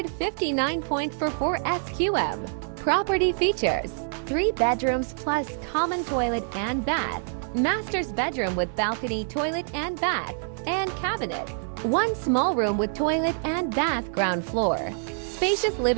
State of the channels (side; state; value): left; silent; 61 dB below the other